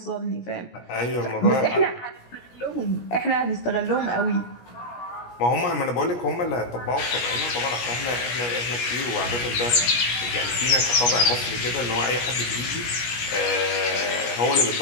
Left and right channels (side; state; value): right; late; 17 ms